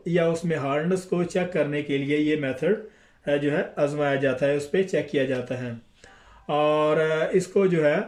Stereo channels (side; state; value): both; identical; correlation 1.00